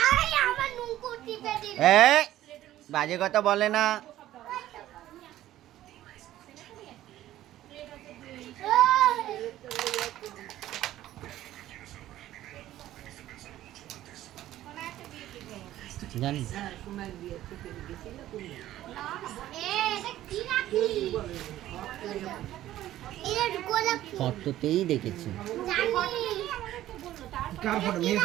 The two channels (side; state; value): left; quieter; 13.8 dB